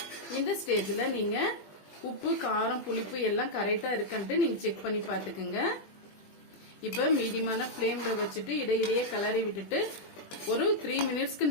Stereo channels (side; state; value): right; late; 20 ms